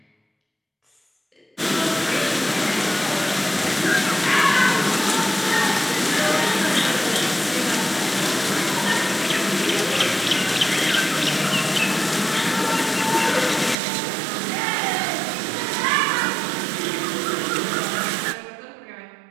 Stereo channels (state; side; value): drops out; left; at 13.8 s